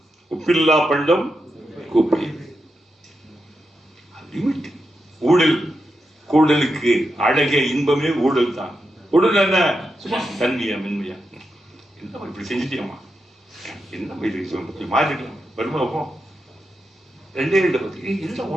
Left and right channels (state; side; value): normal; both; correlation 0.87